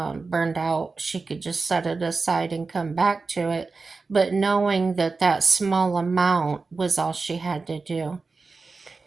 burned out, she could just set it aside and come back to it. But knowing that that small amount was all she had to do.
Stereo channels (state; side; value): quieter; left; 4.1 dB